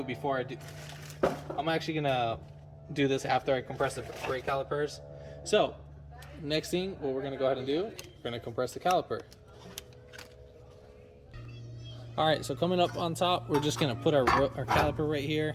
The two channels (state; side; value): identical; both; correlation 1.00